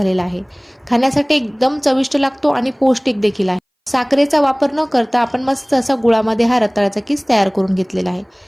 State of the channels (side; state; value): both; identical; correlation 1.00